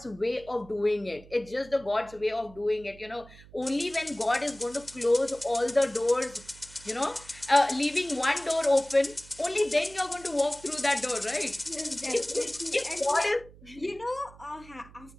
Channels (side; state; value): right; noise; hum, 21 dB below the sound